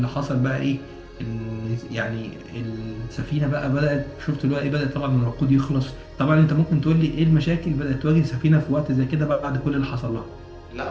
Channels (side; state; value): both; identical; correlation 1.00